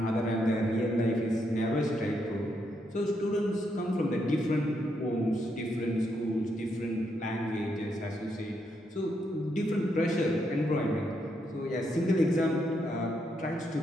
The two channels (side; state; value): both; normal; correlation 0.78